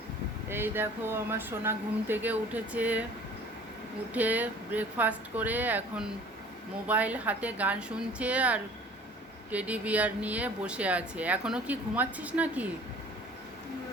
এই দেখো আমার সোনা ঘুম থেকে উঠেছে। উঠে ব্রেকফাস্ট করে এখন মোবাইল হাতে গান শুনছে আর টেডি বিয়ার নিয়ে বসে আছে। এখনো কি ঘুমাচ্ছিস নাকি?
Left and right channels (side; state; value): both; normal; correlation 0.49